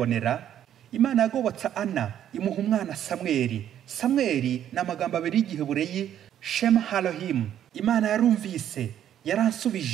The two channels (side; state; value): left; quieter; 10.6 dB